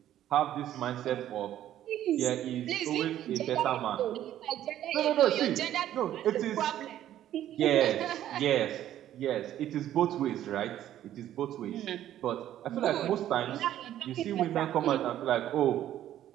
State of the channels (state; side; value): quieter; left; 12.0 dB